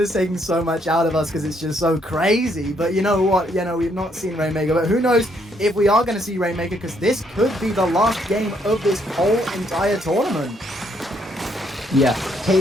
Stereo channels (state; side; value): normal; both; correlation 0.71